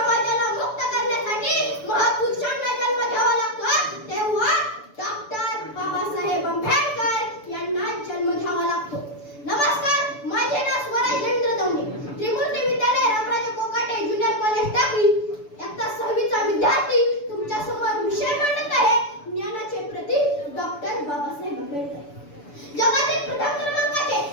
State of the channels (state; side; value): late; right; 6.9 ms